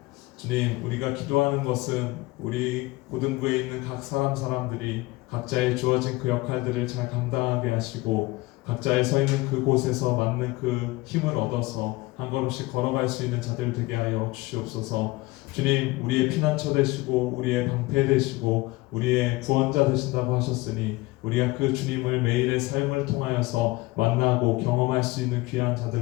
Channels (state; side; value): quieter; right; 21.1 dB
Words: 주님, 우리가 기도하는 것은 우리 고등부에 있는 각 사람들이 각자의 주어진 그 역할들을 잘 감당하게 하시고 각자의 서 있는 그곳에서 맞는 그 힘을 얻어서 한 걸음씩 걸어갈 수 있는 자들 되게 하여 주시옵소서. 주님, 우리의 피난처 되시고 우리의 방패 되시고 우리의 구원자 되신다고 하셨으니 우리가 그 주님을 매일의 삶을 통하여서 만나고 경험할 수 있는 귀한